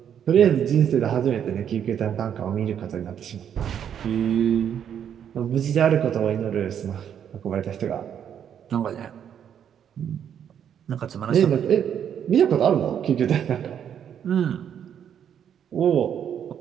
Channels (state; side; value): quieter; left; 8.9 dB